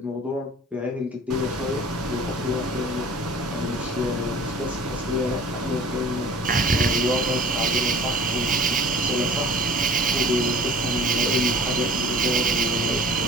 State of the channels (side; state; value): both; normal; correlation 0.46